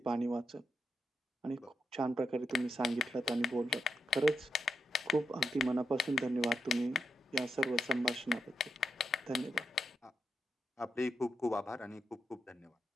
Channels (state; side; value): normal; both; correlation 0.85